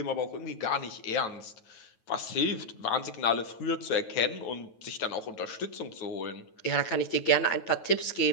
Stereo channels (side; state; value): right; late; 9.2 ms